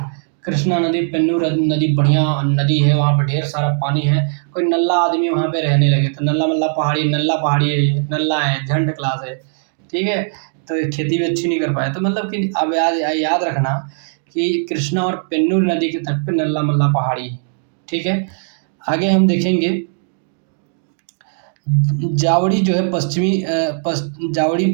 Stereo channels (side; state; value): left; silent; digital silence